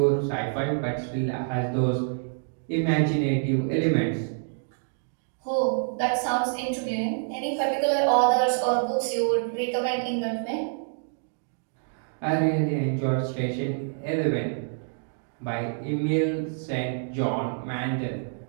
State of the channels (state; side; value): silent; left; digital silence